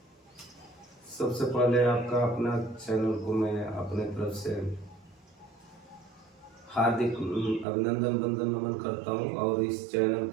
सबसे पहले आपका अपना चैनल को मैं अपने तरफ से हार्दिक अभिनंदन वंदन नमन करता हूं और इस चैनल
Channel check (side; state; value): left; drops out; at 7.7 s